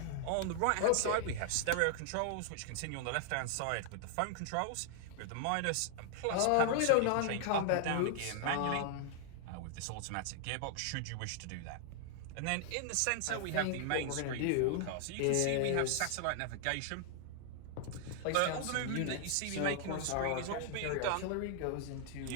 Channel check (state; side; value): different; both; correlation 0.00